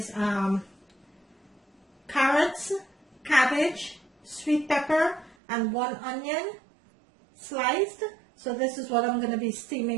carrots, cabbage, sweet pepper, and 1 onion sliced. So this is what I'm going to be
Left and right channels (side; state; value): left; drops out; at 5.4 s